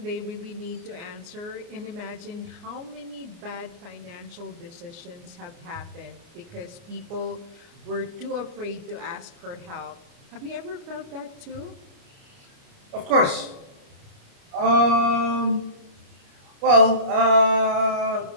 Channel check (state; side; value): late; left; 29 ms